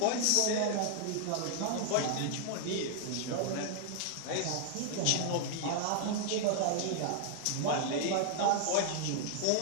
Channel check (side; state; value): both; different; correlation -0.01